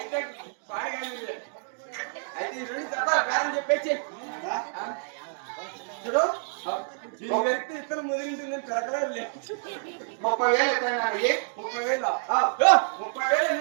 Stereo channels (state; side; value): silent; left; digital silence